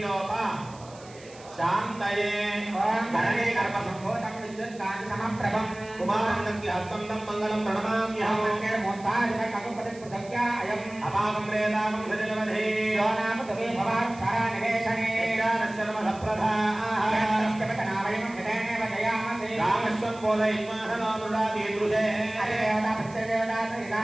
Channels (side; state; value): right; noise; hiss, 22 dB below the sound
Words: శాంతయే धरणे गर्भसम्भूतं विद्युत्कान्ति समप्रभं కుమారందకి హస్తం తం మంగళం ప్రణమామ్యహం मोत्तादिककुपतिपृथक्या अयम् అపాకం రేదాకం సజలవధే यो नाम तवे भवाक्षरानिवेशने సర్వసప్రధాః वयं यदेनेव जयामसे రామస్వం బోధయిత్మాహనానురాది దృశే अदेवता प्रत्यदेवता सहिता